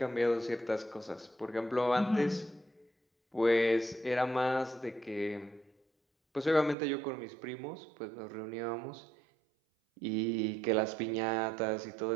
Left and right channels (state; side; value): drops out; left; at 6.8 s